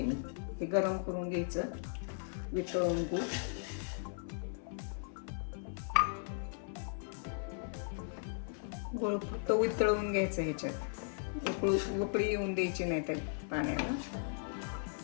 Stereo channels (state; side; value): silent; right; 53 dB below the other